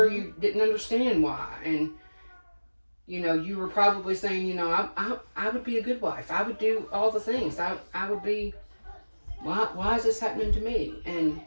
you didn't understand why, and you were probably saying, I would be a good wife. I would do all the things. I would be. Why is this happening to me? And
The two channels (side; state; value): both; inverted; correlation -1.00